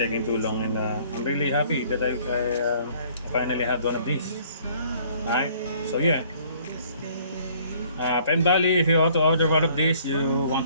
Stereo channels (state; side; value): inverted; both; correlation -0.58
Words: too long, and I'm really happy that I finally had one of these. Alright, so yeah. Pen Bali, if you ought to order one of these, you